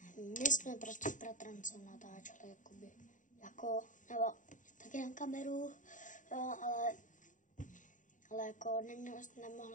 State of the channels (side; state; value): right; late; 0.37 ms